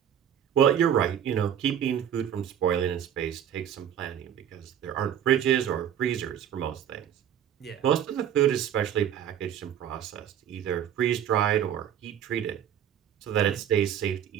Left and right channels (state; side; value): quieter; left; 9.5 dB